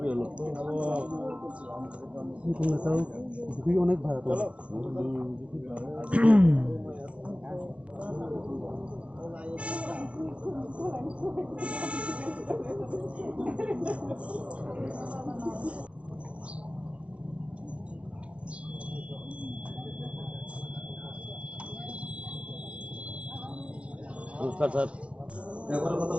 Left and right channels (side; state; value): left; late; 0.062 ms